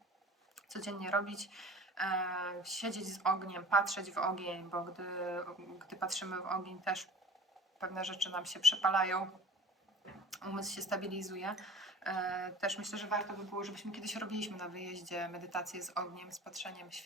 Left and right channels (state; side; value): normal; both; correlation 0.40